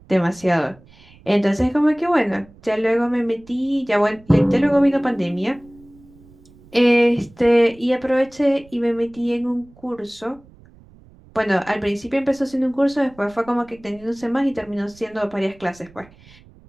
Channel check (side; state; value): right; noise; rumble, 26 dB below the sound